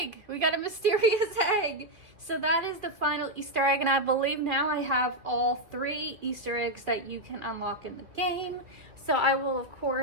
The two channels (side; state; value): left; late; 2.0 ms